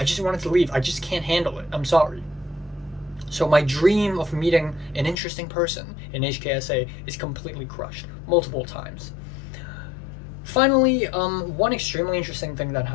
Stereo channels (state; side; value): drops out; right; at 5.2 s